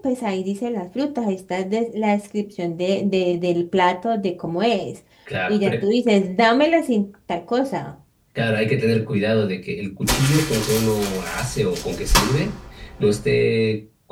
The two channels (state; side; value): identical; both; correlation 1.00